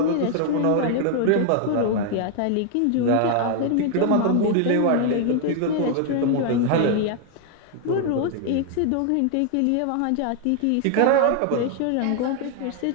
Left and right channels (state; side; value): different; both; correlation 0.00